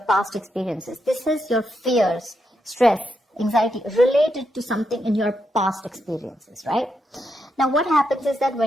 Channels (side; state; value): both; normal; correlation 0.82